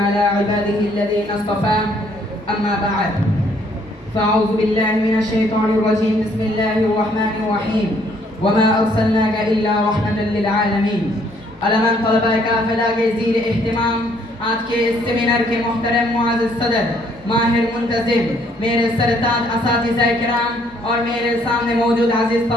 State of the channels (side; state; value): both; normal; correlation 0.65